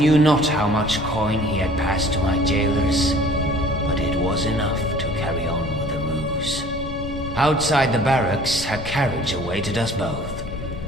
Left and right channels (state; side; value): noise; left; rumble, 10 dB below the sound